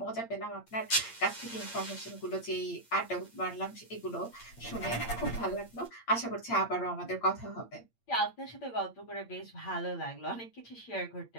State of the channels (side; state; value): right; late; 8.7 ms